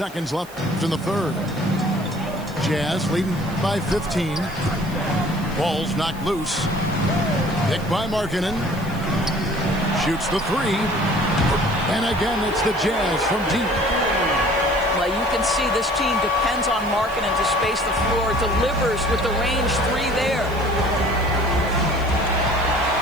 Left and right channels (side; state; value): right; noise; hiss, 21 dB below the sound